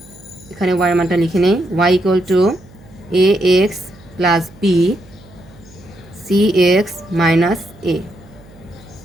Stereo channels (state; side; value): noise; right; hum, 24 dB below the sound